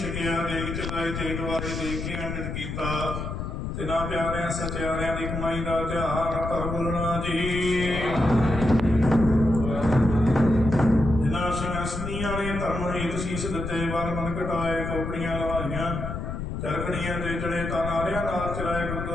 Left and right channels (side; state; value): left; noise; rumble, 5 dB below the sound